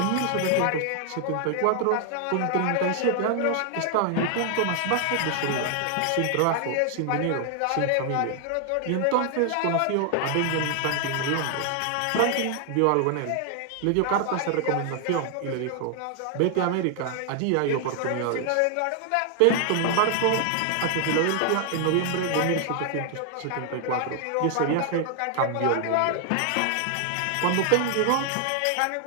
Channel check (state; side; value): different; both; correlation 0.00